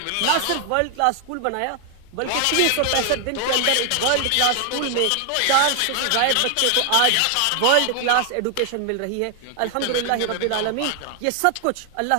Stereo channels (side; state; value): both; different; correlation 0.00